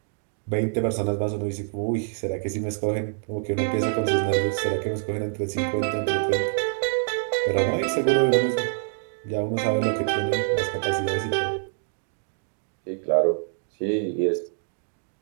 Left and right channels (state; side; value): silent; left; digital silence